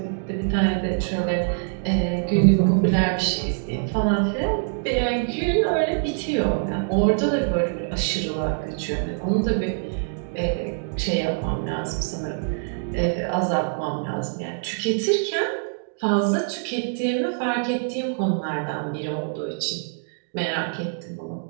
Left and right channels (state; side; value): silent; left; digital silence